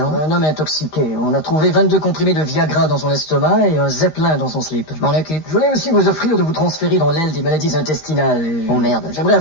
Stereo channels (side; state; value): right; late; 13 ms